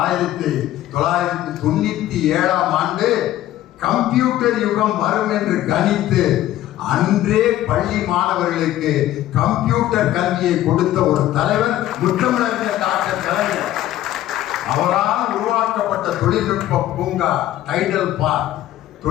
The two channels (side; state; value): right; quieter; 13.7 dB